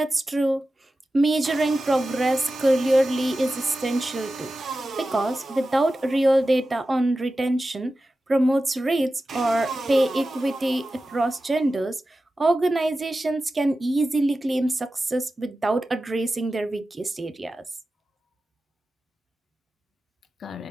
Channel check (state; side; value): normal; both; correlation 0.94